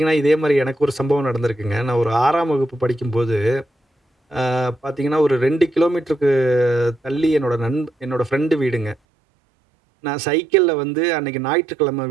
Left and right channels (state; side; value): drops out; left; at 9.0 s